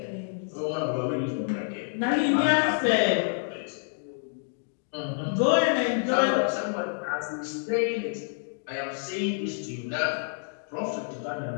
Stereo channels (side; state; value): right; silent; digital silence